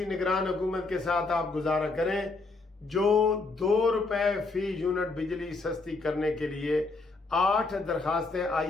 نگران حکومت کے ساتھ آپ گزارا کریں جو 2 روپے فی یونٹ بجلی سستی کرنے کے لیے 8 درخواستیں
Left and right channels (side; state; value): right; quieter; 3.6 dB